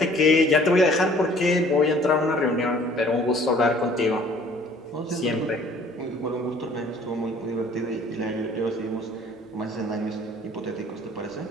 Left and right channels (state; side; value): normal; both; correlation 0.54